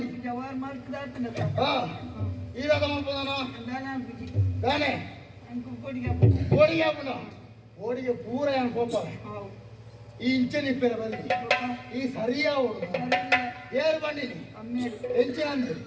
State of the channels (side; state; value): both; identical; correlation 1.00